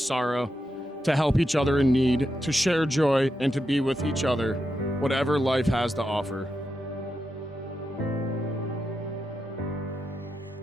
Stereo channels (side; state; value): both; normal; correlation 0.86